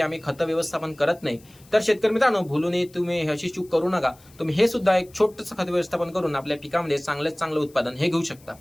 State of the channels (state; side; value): noise; left; hiss, 27 dB below the sound